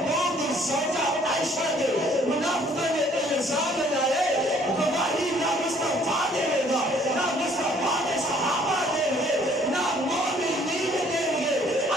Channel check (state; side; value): normal; both; correlation 0.60